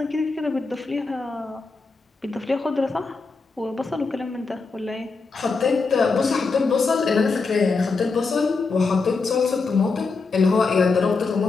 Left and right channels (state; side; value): quieter; right; 4.3 dB